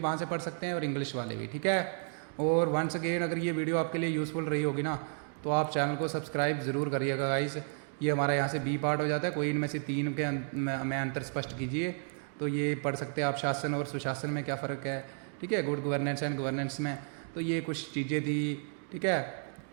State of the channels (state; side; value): silent; left; 56 dB below the other